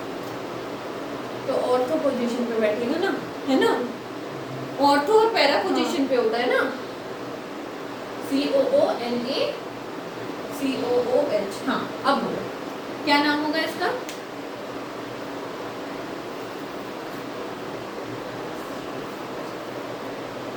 तो ऑर्थो पोजीशन पे बैठेगा ना, है ना, ऑर्थो और पैरा पोजीशन पे होता है ना, COONACOOH। हाँ, अब बोलो क्या नाम होगा इसका?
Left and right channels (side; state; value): both; identical; correlation 1.00